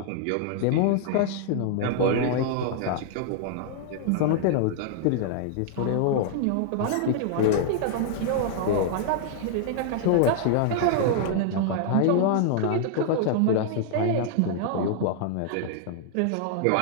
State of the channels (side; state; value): both; different; correlation -0.01